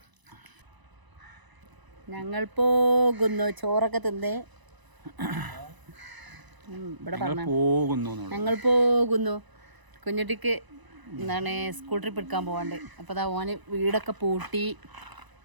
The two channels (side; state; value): left; late; 1.0 ms